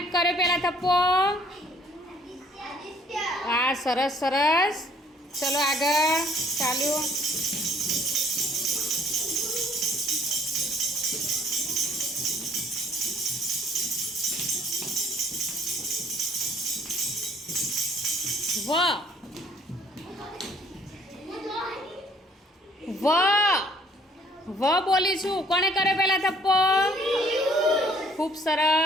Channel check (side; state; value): both; normal; correlation 0.59